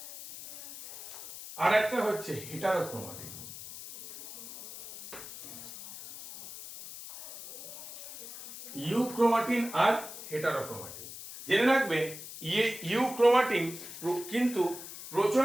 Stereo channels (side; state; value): left; noise; hiss, 12 dB below the sound